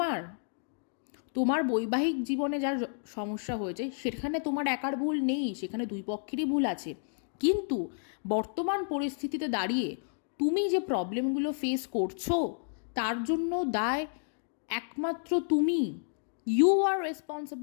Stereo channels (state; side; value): silent; right; digital silence